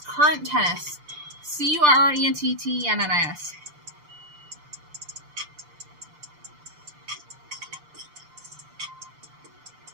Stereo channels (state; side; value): late; left; 6.8 ms